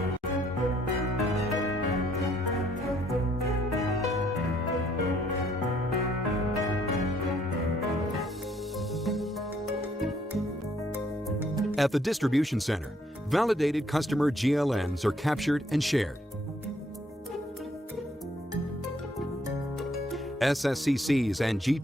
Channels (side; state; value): both; normal; correlation 0.67